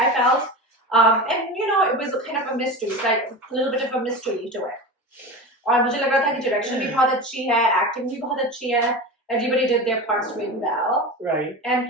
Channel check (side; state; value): both; normal; correlation 0.27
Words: felt. And you know, it was kind of a mystery, like a little bit of a mystery to it. और मुझे लग रहा था कि direction भी बहुत अच्छी है, acting भी बहुत अच्छी है. Everybody did their parts really well. Right. And